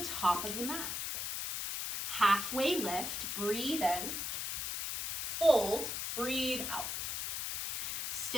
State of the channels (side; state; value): left; noise; hiss, 2 dB below the sound